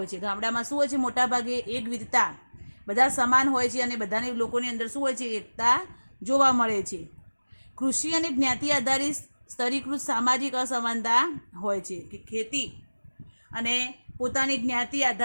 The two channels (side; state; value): both; inverted; correlation -1.00